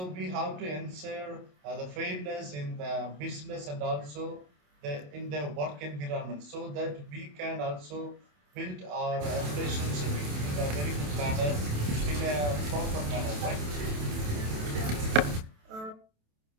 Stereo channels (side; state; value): left; late; 27 ms